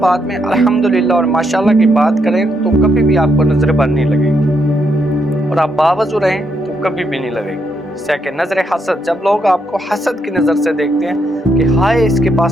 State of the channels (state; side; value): normal; both; correlation 0.78